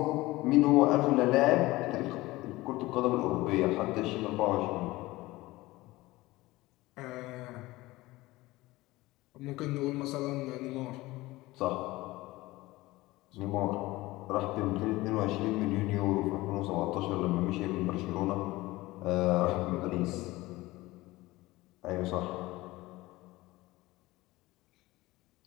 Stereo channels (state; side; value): quieter; right; 19.4 dB